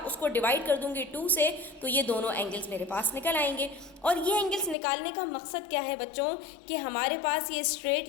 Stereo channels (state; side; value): drops out; right; at 4.8 s